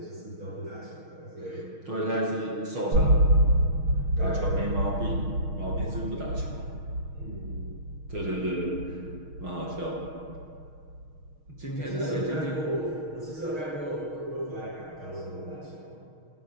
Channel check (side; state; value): left; late; 6.4 ms